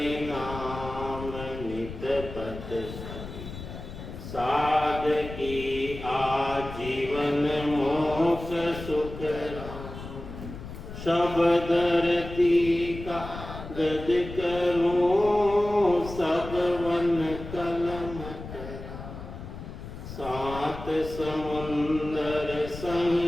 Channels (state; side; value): noise; left; rumble, 11 dB below the sound